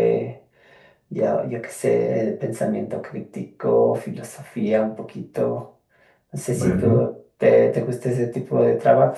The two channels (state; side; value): identical; both; correlation 1.00